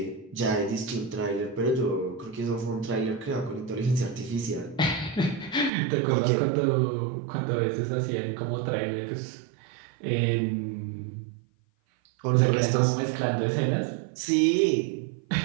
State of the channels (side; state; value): left; drops out; at 5.7 s